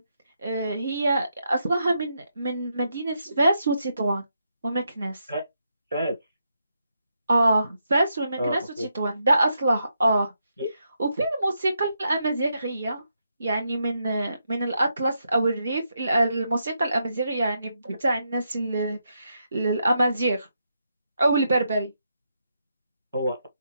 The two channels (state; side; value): inverted; both; correlation -0.81